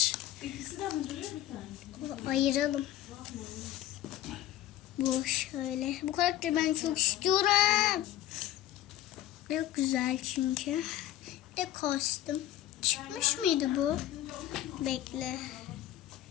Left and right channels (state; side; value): quieter; right; 13.4 dB